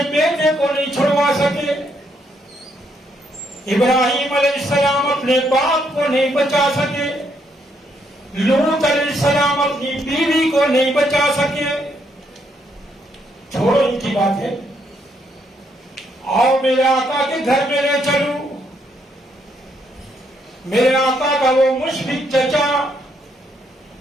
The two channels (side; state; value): both; normal; correlation 0.74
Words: بیٹے کو نہیں چھڑوا سکے، ابراہیم علیہ السلام اپنے باپ کو نہیں بچا سکے، لوط علیہ السلام اپنی بیوی کو نہیں بچا سکے. چھوڑو ان کی باتیں، آؤ میرے آقا کے گھر میں لے چلوں. میرے آقا کا وہ مشفق چچا